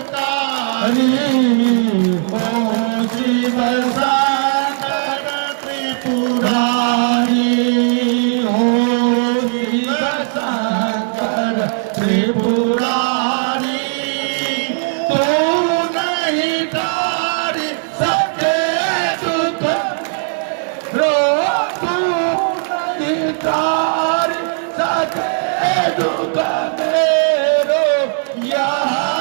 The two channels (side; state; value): left; silent; digital silence